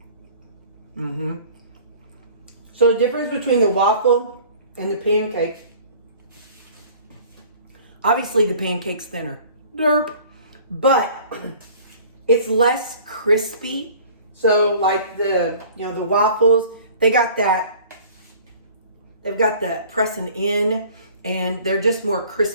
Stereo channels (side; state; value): both; inverted; correlation -0.48